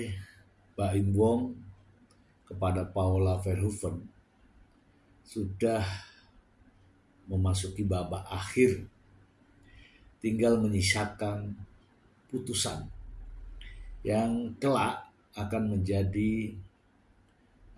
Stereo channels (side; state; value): both; identical; correlation 1.00